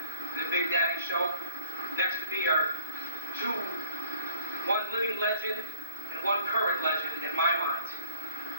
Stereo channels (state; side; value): inverted; both; correlation -0.53